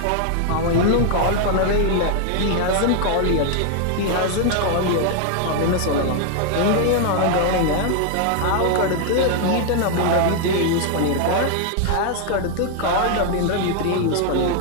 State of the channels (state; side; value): different; both; correlation 0.00